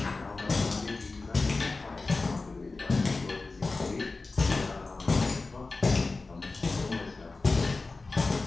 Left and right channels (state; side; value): quieter; right; 3.7 dB